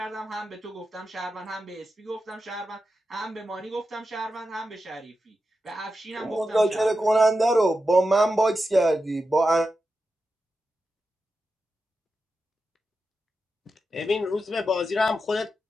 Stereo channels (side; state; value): both; normal; correlation 0.90